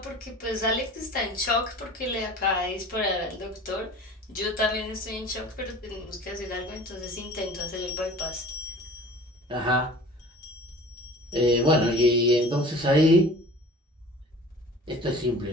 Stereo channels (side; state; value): both; normal; correlation 0.42